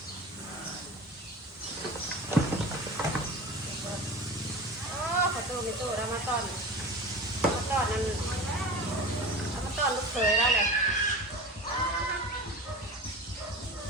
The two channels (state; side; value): normal; both; correlation 0.33